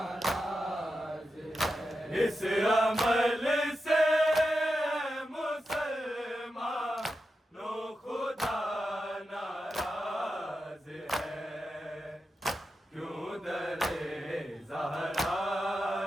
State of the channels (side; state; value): both; normal; correlation 0.89